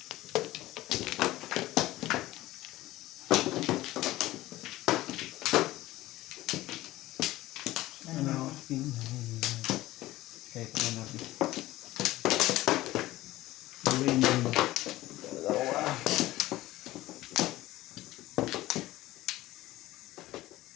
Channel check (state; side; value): quieter; right; 16.8 dB